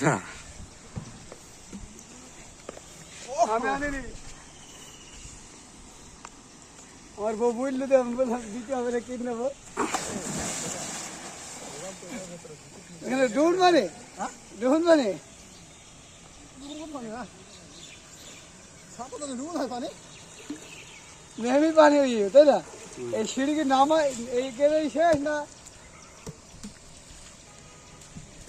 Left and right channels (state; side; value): identical; both; correlation 1.00